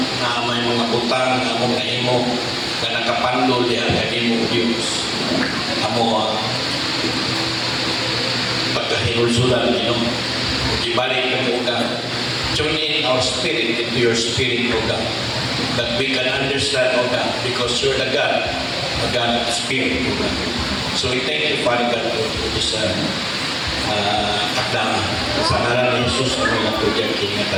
naamay mga utang, among naimo, na nakapandol diyan kaya mo Diyos. Amo pagkahinulsulan Ginoo. Ibalik ng ugan. Tune in our spirit into your spirit, O God, that we can understand, O God, because you're the God, a God of spirit, O God. So we thank you, Father God, for this akdama. Sa ngalan ni Jesus, kami lang po dyan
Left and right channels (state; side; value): identical; both; correlation 1.00